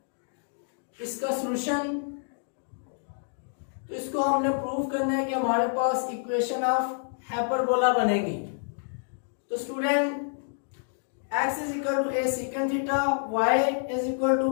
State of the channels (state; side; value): silent; right; digital silence